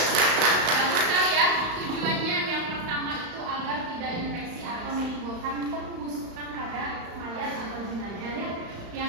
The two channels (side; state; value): left; late; 35 ms